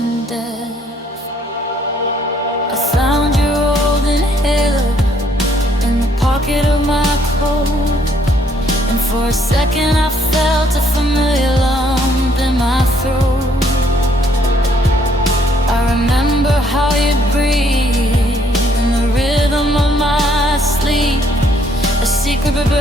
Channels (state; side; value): normal; both; correlation 0.67